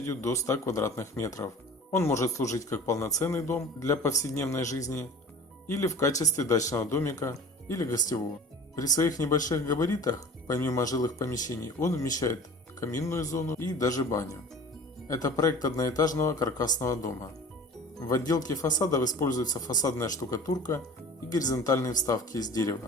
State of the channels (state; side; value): normal; both; correlation 0.42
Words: до 100 квадратных метров. Он может служить как полноценный дом для повседневной жизни, или в качестве дачного домика, или гостевого. При своих небольших габаритах, помимо жилых помещений, он вмещает каминную зону и даже баню. Это проект одноэтажного каркасного дома. В отделке фасадов используется фасадная штукатурка и горизонтальные вставки из